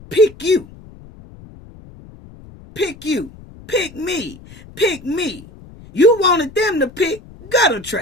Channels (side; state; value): left; noise; rumble, 20 dB below the sound